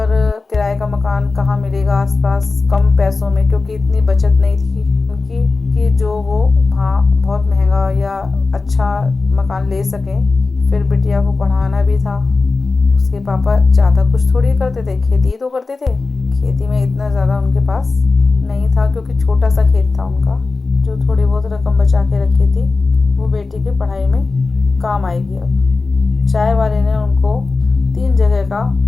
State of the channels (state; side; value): quieter; right; 3.9 dB